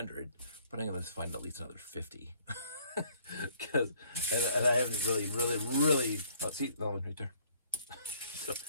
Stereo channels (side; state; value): both; inverted; correlation -0.61